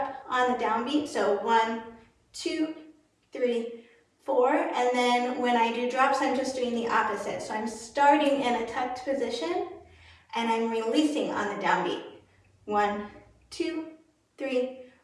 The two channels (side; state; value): both; identical; correlation 1.00